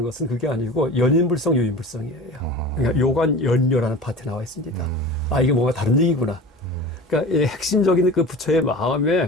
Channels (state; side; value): normal; both; correlation 0.36